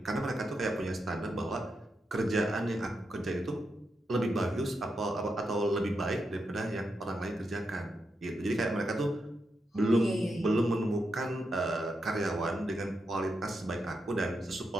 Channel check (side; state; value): both; normal; correlation 0.85